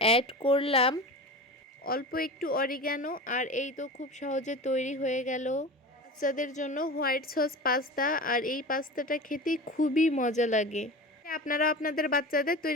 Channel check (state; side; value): normal; both; correlation 0.32